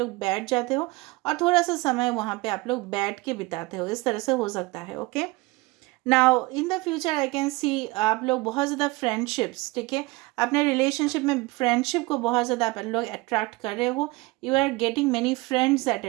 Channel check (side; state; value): left; quieter; 22.8 dB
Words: बैठ जाते हो और थोड़ा सा समय वहाँ पे आप लोग बैठ के बिताते हो, इस तरह से हो सकता है, okay. Now in the future I can सी आप लोग बहुत ज़्यादा फ्रेंडशिप्स, ठीक है, अपने रिलेशनशिप में फ्रेंडशिप को बहुत ज़्यादा आप लोग अट्रैक्ट कर रहे हो, you are getting many friends at